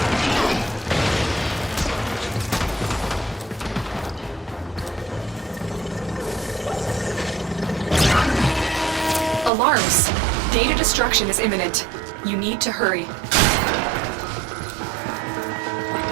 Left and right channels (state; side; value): drops out; left; at 9.5 s